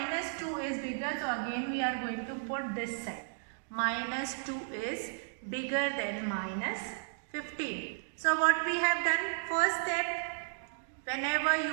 2 is bigger, so again we are going to put this side. Minus 2 is bigger than minus 15. So what we have done, first step, whenever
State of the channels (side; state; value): left; silent; digital silence